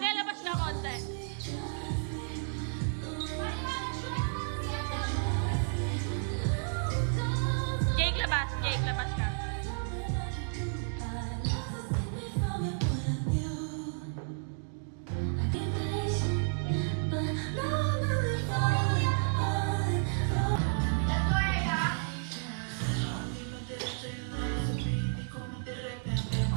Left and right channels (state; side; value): silent; left; digital silence